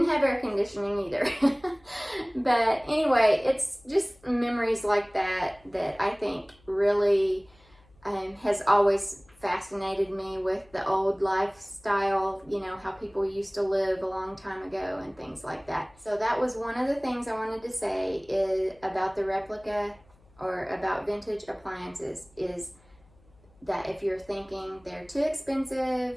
have air conditioning either. But anyway, it's just memories like that that I think really has always fascinated me with the old lifestyle, you know, how people used to live a long time ago and things like that. So that was one of the things I wanted to say is about the replica or about vintage appliances, is that if you're thinking they're too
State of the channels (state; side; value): noise; left; hum, 29 dB below the sound